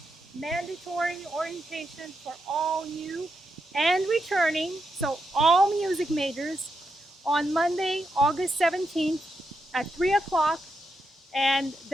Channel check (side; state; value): both; normal; correlation 0.84